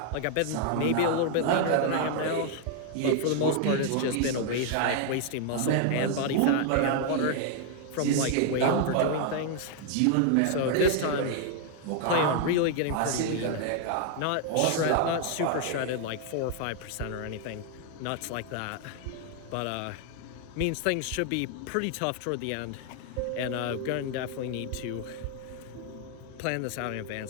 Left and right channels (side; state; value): both; different; correlation 0.00